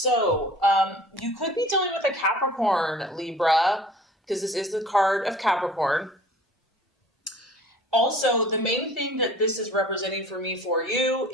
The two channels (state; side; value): normal; both; correlation 0.47